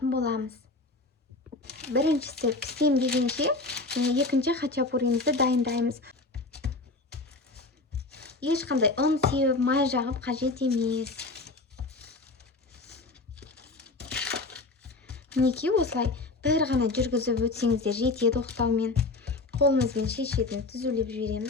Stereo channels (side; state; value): right; quieter; 3.3 dB